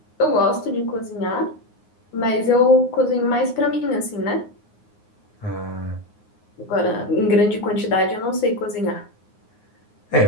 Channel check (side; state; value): right; late; 9.6 ms